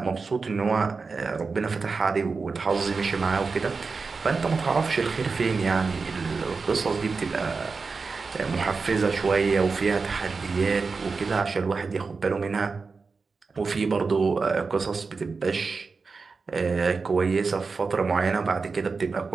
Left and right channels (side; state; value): left; quieter; 4.5 dB